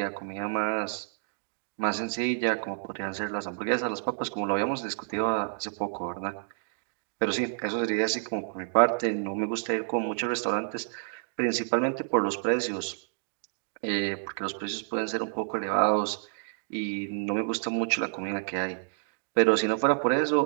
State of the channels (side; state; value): left; silent; digital silence